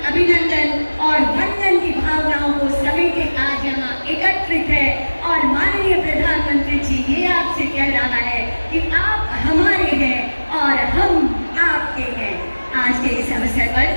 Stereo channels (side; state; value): both; inverted; correlation -1.00